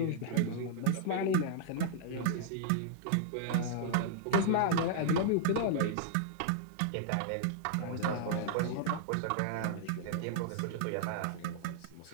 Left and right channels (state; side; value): different; both; correlation -0.02